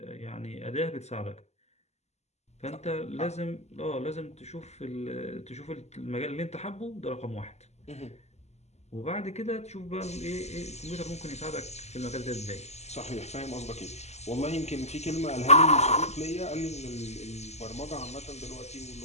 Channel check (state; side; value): late; right; 0.32 ms